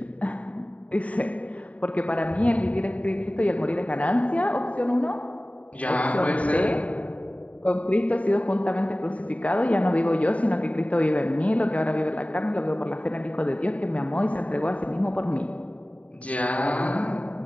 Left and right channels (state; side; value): late; right; 0.067 ms